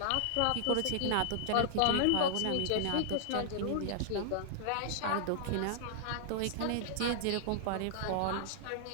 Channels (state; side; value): different; both; correlation -0.01